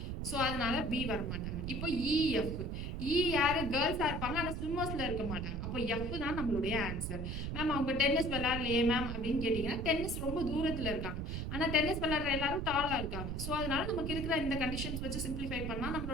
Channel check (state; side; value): noise; right; rumble, 4 dB below the sound